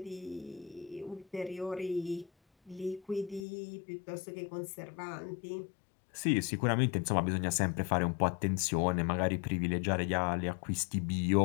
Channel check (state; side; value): drops out; right; at 3.5 s